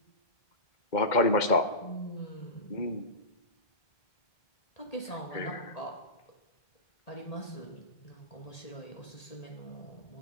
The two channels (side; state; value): right; late; 2.1 ms